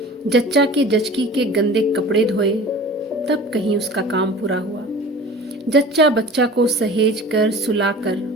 जच्चा के जचकी के गंदे कपड़े धोए, तब कहीं उसका काम पूरा हुआ। जच्चा बच्चा को सहेज कर सुलाकर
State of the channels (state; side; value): normal; both; correlation 0.40